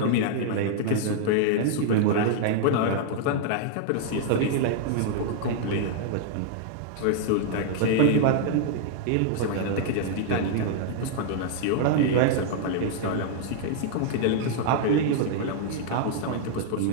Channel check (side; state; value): both; different; correlation -0.01